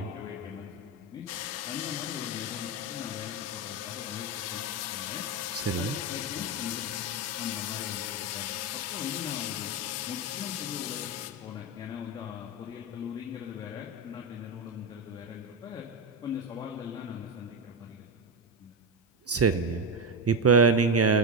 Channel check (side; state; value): both; normal; correlation 0.11